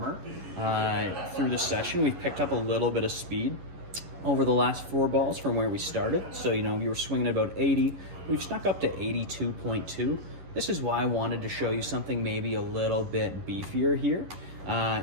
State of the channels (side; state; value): left; late; 11 ms